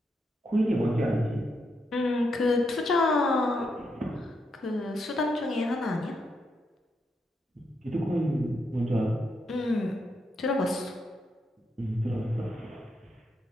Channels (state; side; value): normal; both; correlation 0.81